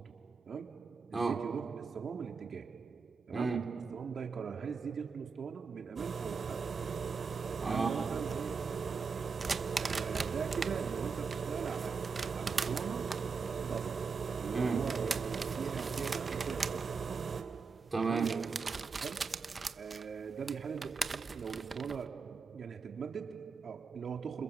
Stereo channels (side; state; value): left; quieter; 5.1 dB